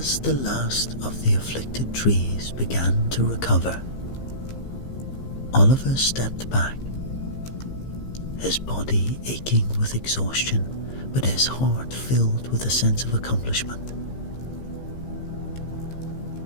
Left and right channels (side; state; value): right; late; 15 ms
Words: the last of the afflicted trees began to recover, Oliver stepped back, his body aching with exhaustion, but his heart filled with a sense of accomplishment.